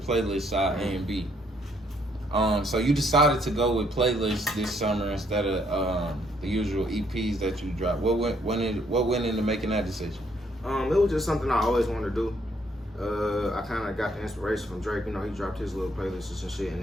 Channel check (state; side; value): normal; both; correlation 0.69